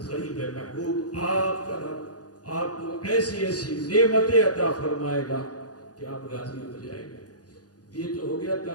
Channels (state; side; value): late; right; 0.68 ms